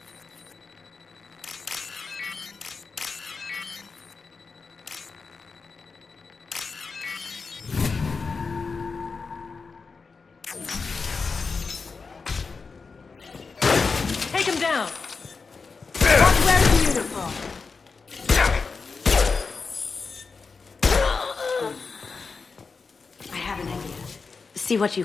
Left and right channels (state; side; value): quieter; right; 4.7 dB